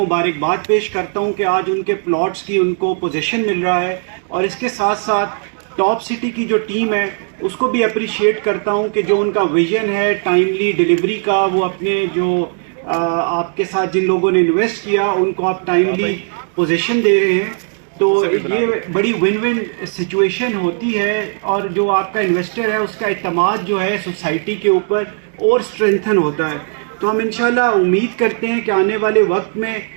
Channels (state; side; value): silent; left; 58 dB below the other